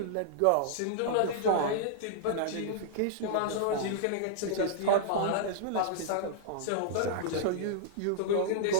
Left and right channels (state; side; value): different; both; correlation -0.01